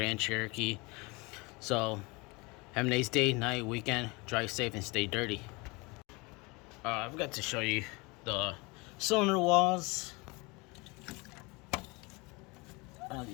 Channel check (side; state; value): right; quieter; 26.3 dB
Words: Cherokee. So have a nice day, night, weekend. Drive safe and stay dirty. I forgot to show you the cylinder walls. I don't know if